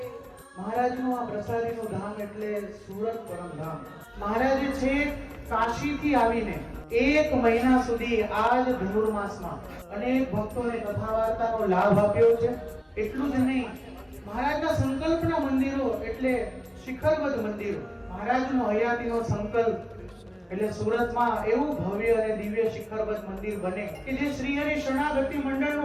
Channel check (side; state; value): both; identical; correlation 1.00